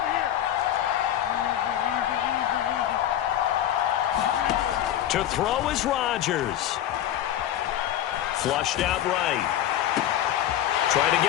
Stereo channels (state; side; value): quieter; right; 11.7 dB